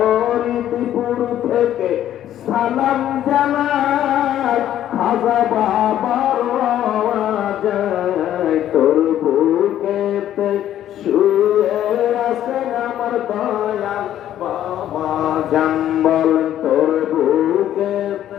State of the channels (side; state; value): right; quieter; 11.6 dB